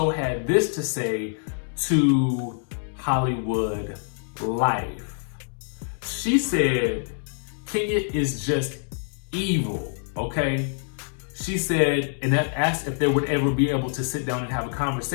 had this to say to Hollywood Life. She said, Kenya is just evil, okay? She said, and asked if they would ever be able to sit down and have a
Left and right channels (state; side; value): silent; right; digital silence